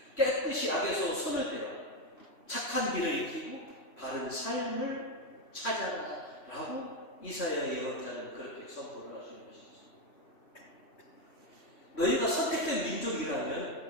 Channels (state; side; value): late; right; 3.6 ms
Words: 깨끗이 악에서 손을 떼라, 착한 길을 익히고 바른 삶을 찾아라 라고 이사야 예언자는 그렇게 선포를 하시는 것이죠. 너희가 선택된